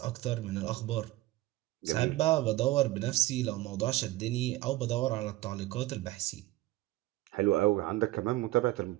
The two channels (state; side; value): quieter; left; 17.5 dB